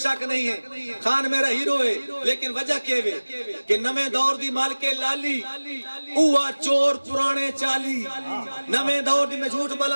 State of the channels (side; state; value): both; inverted; correlation -1.00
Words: نہیں ہے، خان میرا ہیرو ہے، لیکن وجہ کیے کہ نمیں دور دی مالکے لالی اوہ چور پرانے چالی، نمیں دور دی، میں جھوٹ